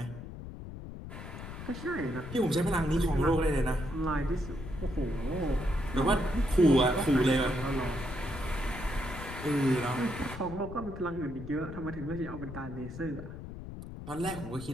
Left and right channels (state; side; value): noise; left; rumble, 10 dB below the sound